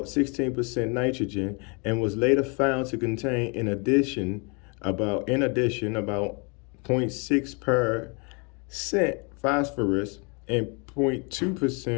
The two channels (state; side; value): quieter; right; 33.1 dB